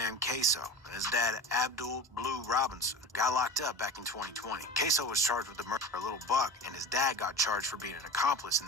Kasoo, and his dad Abdul Blue Robinson, got locked up back in 2020. Kasoo was charged with the murder of Little Buck, and his dad got charged for being an accomplice in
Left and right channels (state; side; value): normal; both; correlation 0.32